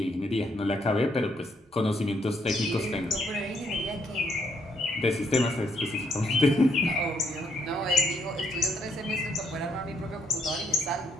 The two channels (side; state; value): both; normal; correlation 0.73